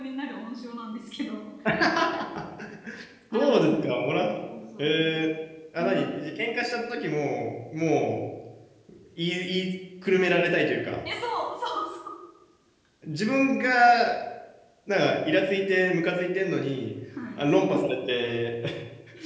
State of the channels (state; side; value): identical; both; correlation 1.00